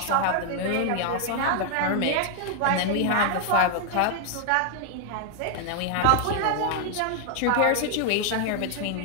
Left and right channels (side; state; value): both; different; correlation 0.00